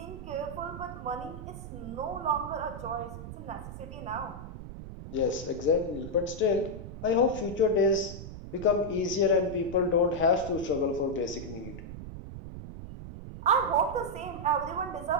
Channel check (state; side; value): noise; right; rumble, 11 dB below the sound